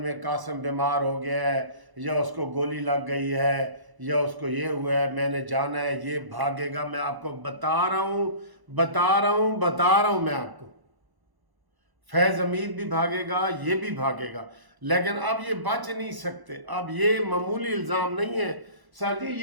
कासिम बीमार हो गया है, या उसको गोली लग गई है, या उसको ये हुआ है, मैंने जाना है, ये भागेगा। मैं आपको बता रहा हूँ मैं आपको, फैज हमीद भी भागेगा, ये भी भागेगा, लेकिन अब ये बच नहीं सकते। अब ये मामूली इल्ज़ाम नहीं है सर जी,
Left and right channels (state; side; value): late; left; 1.0 ms